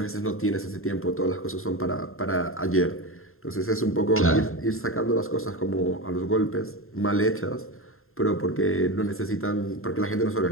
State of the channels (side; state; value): right; late; 0.61 ms